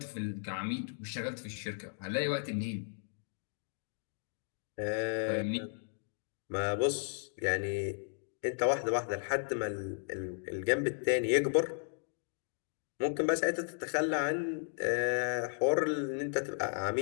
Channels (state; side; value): silent; right; digital silence